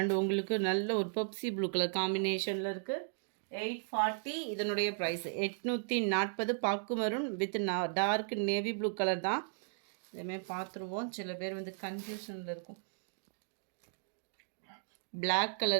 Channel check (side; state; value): left; silent; digital silence